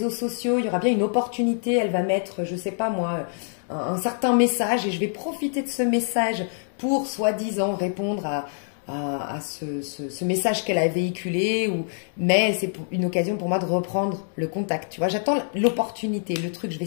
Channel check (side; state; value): right; silent; digital silence